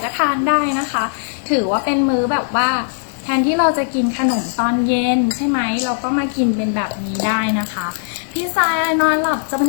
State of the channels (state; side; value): silent; right; digital silence